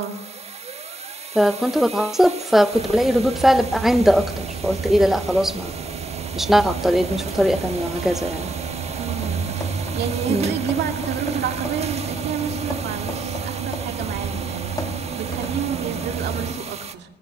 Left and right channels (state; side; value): normal; both; correlation 0.82